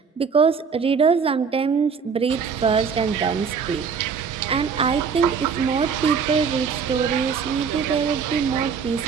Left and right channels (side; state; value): left; quieter; 6.1 dB